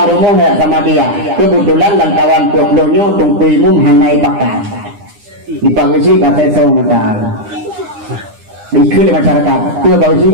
rumah ya sama dia. Kebetulan dan kawan pueblonya tungkui mum hanai pakai. Dipagasi kata so mata. Dikul masyarakat. Kue bagasi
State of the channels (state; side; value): late; left; 9.8 ms